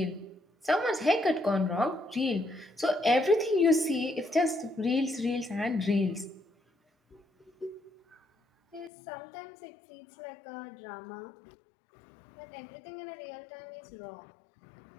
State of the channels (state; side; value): drops out; right; at 8.9 s